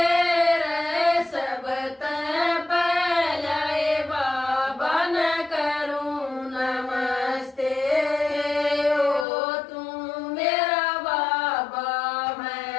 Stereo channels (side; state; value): right; drops out; at 9.2 s